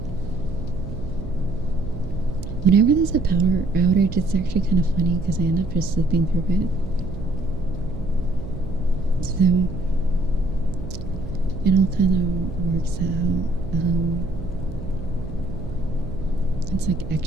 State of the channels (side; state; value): right; noise; hum, 10 dB below the sound